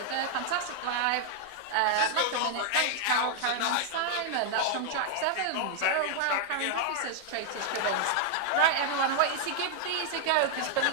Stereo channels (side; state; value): both; different; correlation -0.01